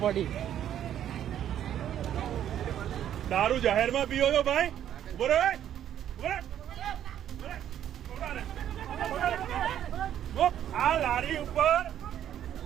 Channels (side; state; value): left; quieter; 10.6 dB